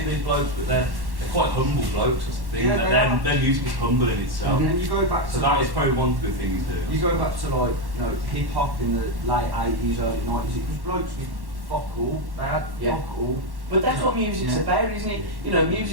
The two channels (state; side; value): late; left; 1.1 ms